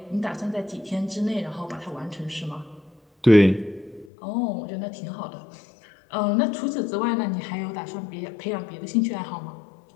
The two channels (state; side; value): drops out; right; at 4.1 s